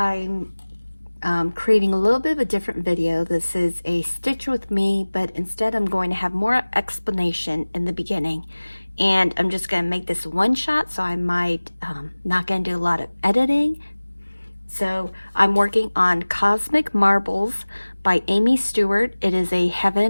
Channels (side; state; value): both; inverted; correlation -1.00